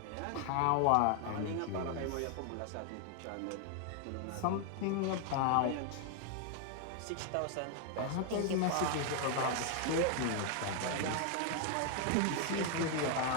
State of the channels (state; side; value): different; both; correlation 0.00